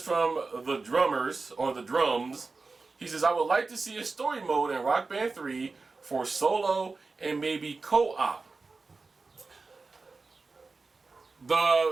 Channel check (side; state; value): left; quieter; 4.0 dB